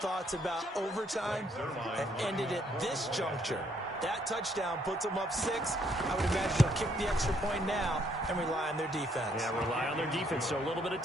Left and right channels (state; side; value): normal; both; correlation 0.69